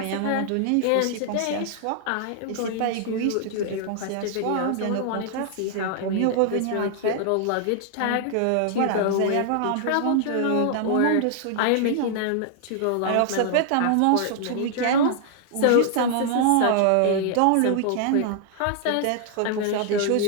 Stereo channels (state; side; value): different; both; correlation 0.00